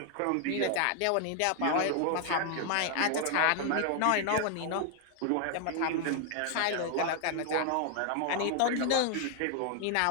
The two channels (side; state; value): both; different; correlation 0.00